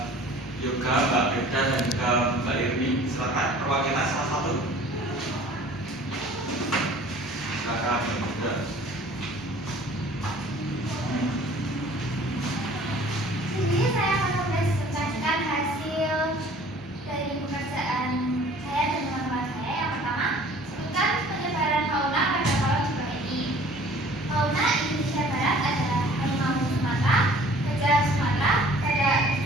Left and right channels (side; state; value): both; normal; correlation 0.50